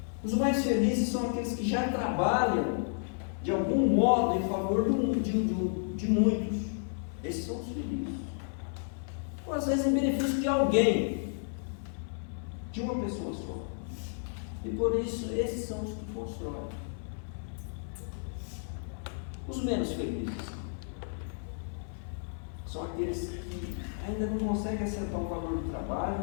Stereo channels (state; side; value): silent; right; 56 dB below the other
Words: Os mais felizes são aqueles que já trabalham de algum modo em favor de muitos. Esses são os felizes. Ou às vezes em benefício de alguém, de uma pessoa só. E por isso, esses são os que constroem. Os menos felizes são aqueles que ainda não conseguem acertar o valor do